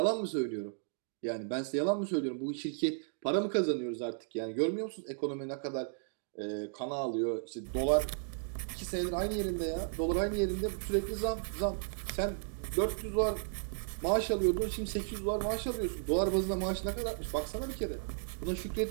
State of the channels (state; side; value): silent; left; digital silence